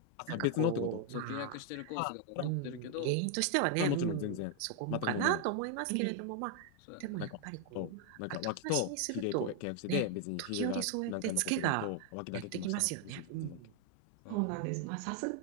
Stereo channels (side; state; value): both; different; correlation 0.00